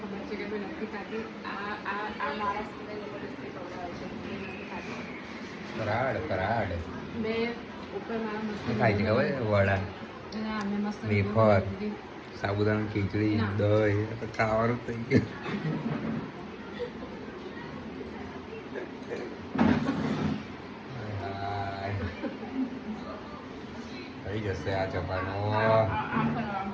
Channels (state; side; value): identical; both; correlation 1.00